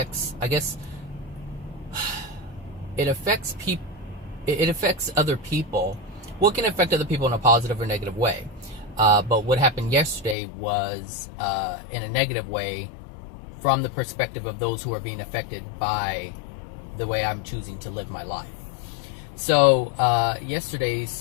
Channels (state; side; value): drops out; right; at 10.4 s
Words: it affects other people. Well, it can affect other people in a positive or negative way. But what happened yesterday was in a negative way from the perspective of those who are being affected by the way I'm choosing to live my life. So yesterday